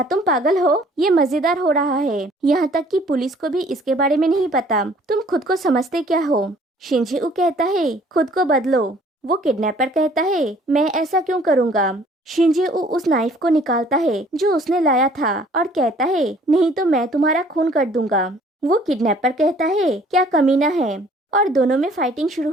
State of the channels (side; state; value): both; normal; correlation 0.56